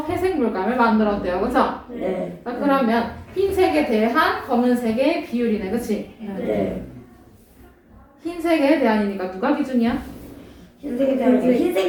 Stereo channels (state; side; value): identical; both; correlation 1.00